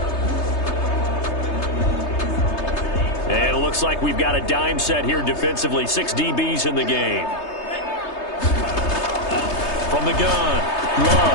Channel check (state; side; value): late; right; 3.3 ms